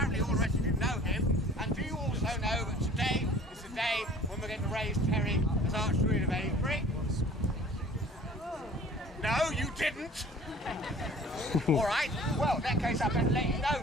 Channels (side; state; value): both; normal; correlation 0.48